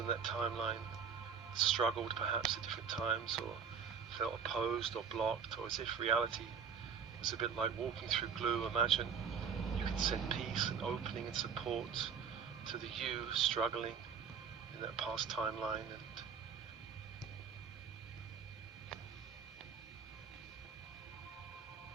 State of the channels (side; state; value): left; quieter; 6.7 dB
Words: that timeline, struggled perhaps at different times or felt opposed or blocked, or as if reality was a bit like walking through glue. Imagine you can send peace and opening and support to the you struggling in that past timeline.